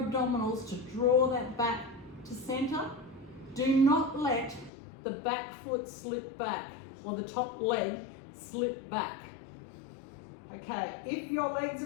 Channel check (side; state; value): right; drops out; at 4.7 s